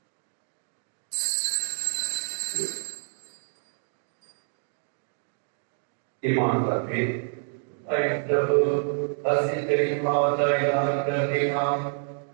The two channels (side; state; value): left; silent; digital silence